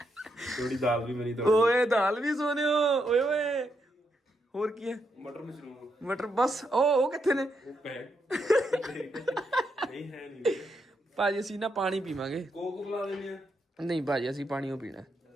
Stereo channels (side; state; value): both; normal; correlation 0.80